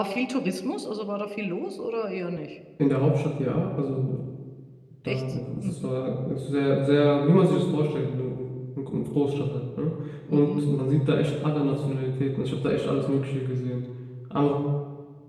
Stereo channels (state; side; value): identical; both; correlation 1.00